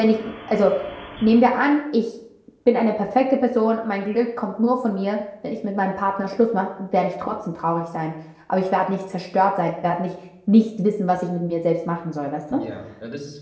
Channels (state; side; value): identical; both; correlation 1.00